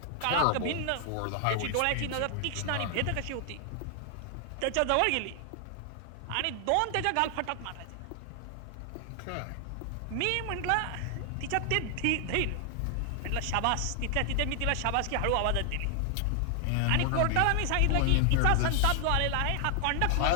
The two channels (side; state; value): both; different; correlation 0.00